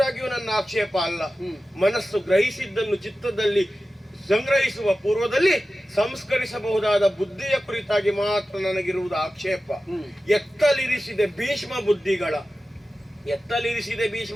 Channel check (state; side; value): normal; both; correlation 0.94